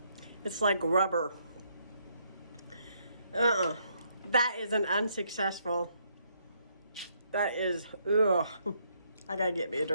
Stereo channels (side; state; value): both; inverted; correlation -0.72